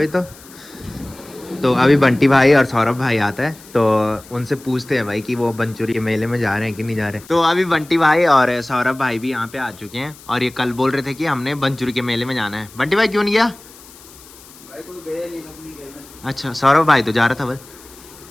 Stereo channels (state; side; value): noise; left; hiss, 21 dB below the sound